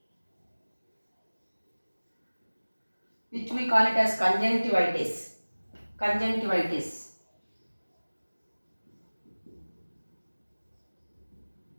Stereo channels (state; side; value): inverted; both; correlation -1.00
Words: which we call it as conjunctivitis. Conjunctivitis.